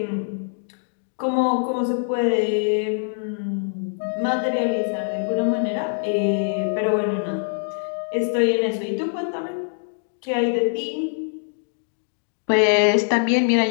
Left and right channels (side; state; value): right; silent; digital silence